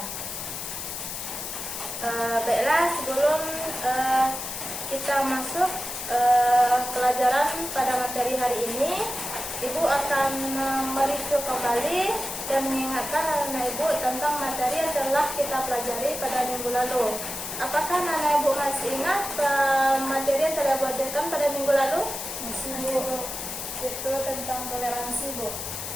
Baiklah, sebelum kita masuk pelajaran pada materi hari ini, Ibu akan mereview kembali dan mengingatkan anak Ibu tentang materi yang telah kita pelajari pada minggu lalu. Apakah anak Ibu masih ingat materi yang telah Ibu ajarkan pada minggu lalu? Masih Bu. Itu tentang toleransi Bu.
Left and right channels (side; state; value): left; noise; hiss, 6 dB below the sound